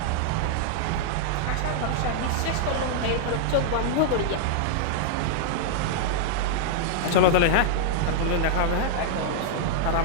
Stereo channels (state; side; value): different; both; correlation -0.01